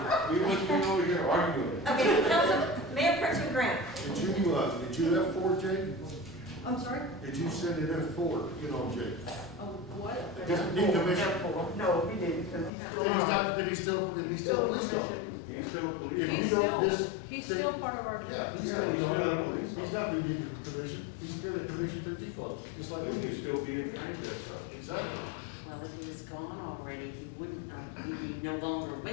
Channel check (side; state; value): right; drops out; at 12.7 s